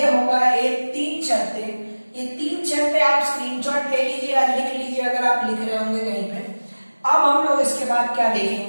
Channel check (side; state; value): both; inverted; correlation -1.00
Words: होगा एक 3 शर्तें। ये 3 शर्तें आप स्क्रीनशॉट ले लीजिए या लिख लीजिए अगर आप लिख रहे होंगे कहीं पे। अब हम लोग इसके बाद क्या